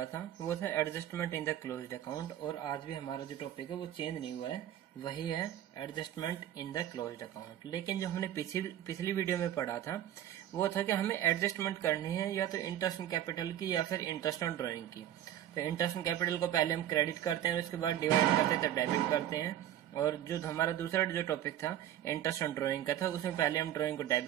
था वो था adjustment in the closed account, और आज भी हमारा जो टॉपिक है वो चेंज नहीं हुआ है, वही है adjustment in the closed account. लेकिन जो हमने पिछली वीडियो में पढ़ा था वो था कि हमें एडजस्टमेंट करनी है या तो इंटरेस्ट ऑन कैपिटल की या फिर इंटरेस्ट ऑन ड्रॉइंग की। तो इंटरेस्ट ऑन कैपिटल को पहले हम क्रेडिट करते हैं, उसके बाद डिवाइड करते हैं तो डेबिट करते हैं। और जो हमारा दूसरा जो टॉपिक था इंटरेस्ट ऑन ड्राइंग का था, उसमें पहले हम ड्राइंग को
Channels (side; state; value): left; quieter; 11.8 dB